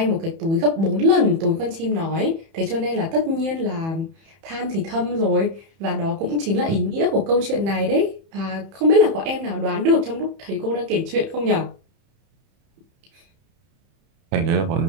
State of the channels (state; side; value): late; left; 31 ms